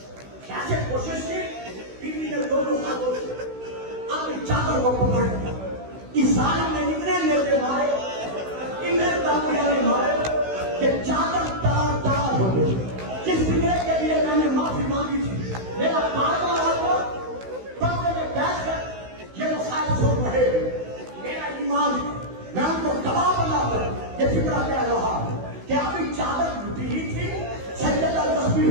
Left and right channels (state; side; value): late; left; 16 ms